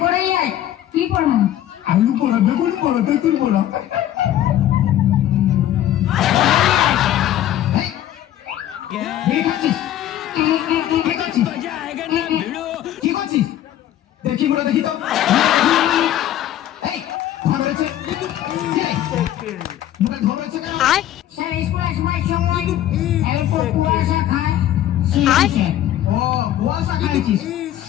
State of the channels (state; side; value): quieter; right; 12.2 dB